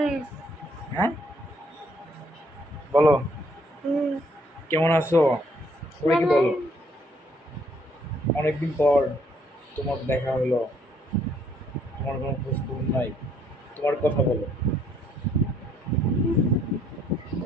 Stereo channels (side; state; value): both; normal; correlation 0.67